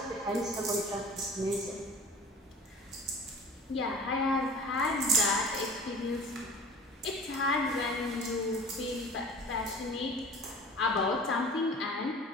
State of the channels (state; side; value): normal; both; correlation 0.42